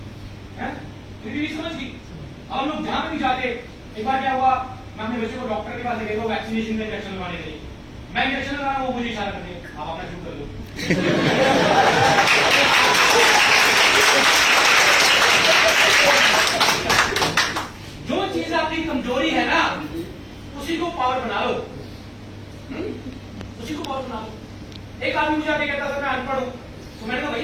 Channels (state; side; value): identical; both; correlation 1.00